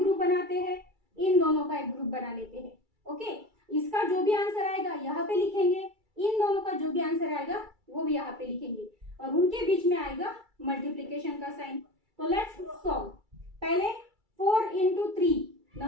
बनाते हैं, इन दोनों का एक ग्रुप बना लेते हैं। ओके, इसका जो भी आंसर आएगा यहाँ पे लिखेंगे, इन दोनों का जो भी आंसर आएगा वो भी यहाँ पे लिखेंगे और उनके बीच में आएगा मल्टीप्लीकेशन का साइन। तो लेट्स सॉल्व। पहले 4 इंटू 3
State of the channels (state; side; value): late; left; 2.3 ms